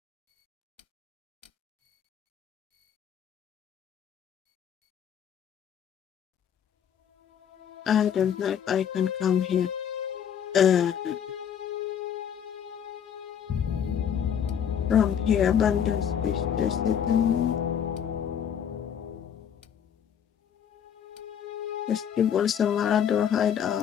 I don't know if I can come here. From here, abandoned space resident. Festival Samad or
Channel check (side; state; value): right; quieter; 8.6 dB